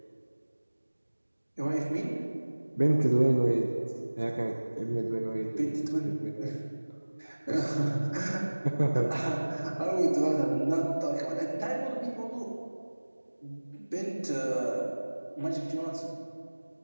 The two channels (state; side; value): inverted; both; correlation -1.00